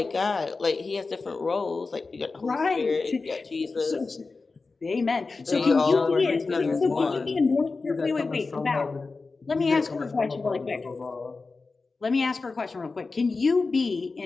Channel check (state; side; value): quieter; right; 4.0 dB